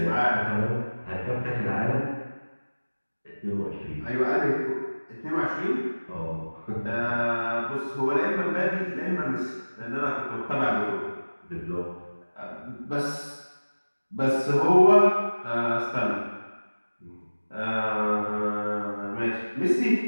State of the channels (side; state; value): both; inverted; correlation -1.00